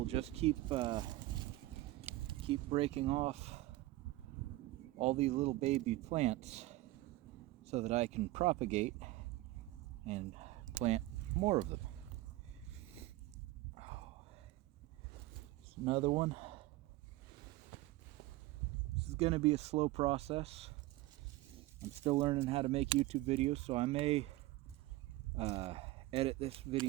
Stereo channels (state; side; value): quieter; left; 18.0 dB